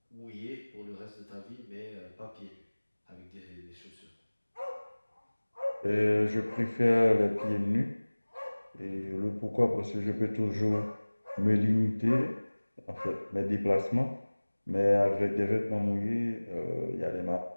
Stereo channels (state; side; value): inverted; both; correlation -1.00